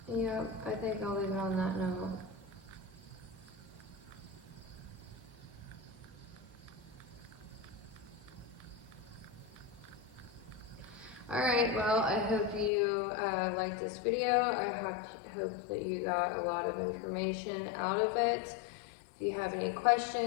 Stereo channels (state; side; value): drops out; right; at 12.7 s